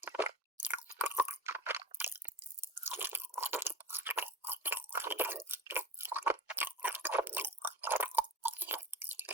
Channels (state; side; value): normal; both; correlation 0.32